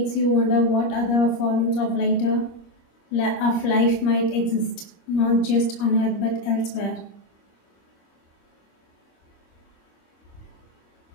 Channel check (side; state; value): right; late; 25 ms